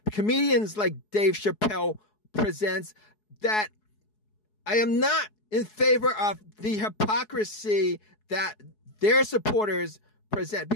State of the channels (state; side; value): late; right; 4.7 ms